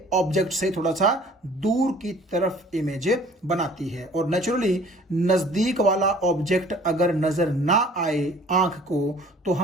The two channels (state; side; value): normal; both; correlation 0.52